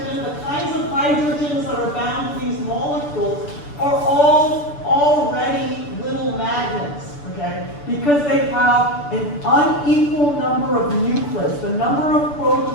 the kinds of hydrogens that are bound to these molecules, are all already little magnets, okay? Because they have an unequal number of nuclids. The number of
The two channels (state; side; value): late; right; 6.9 ms